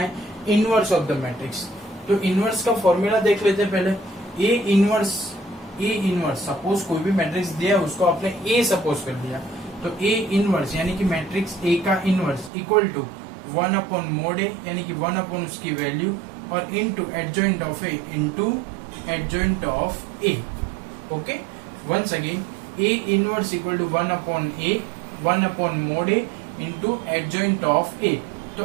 Inverse of the matrix. तो इनवर्स का फॉर्मूला देख लेते हैं पहले। ए इनवर्स सपोज कोई भी मैट्रिक्स दिया उसको आपने ए सपोज कर दिया, तो ए इनवर्स यानी कि मैट्रिक्स ए का inverse equal to 1 upon mod A यानी कि 1 अपॉन उसकी वैल्यू और into adjoint of A into adjoint of A. Okay, once again A inverse equal to 1 upon mod A into adjoint of A.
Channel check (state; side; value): drops out; left; at 12.5 s